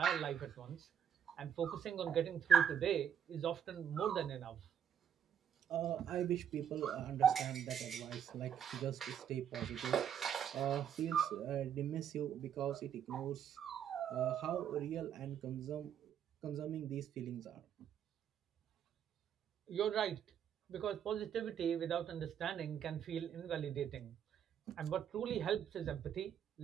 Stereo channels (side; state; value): left; quieter; 8.8 dB